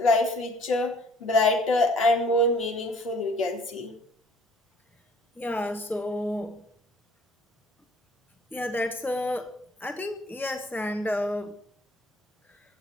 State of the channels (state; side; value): normal; both; correlation 0.56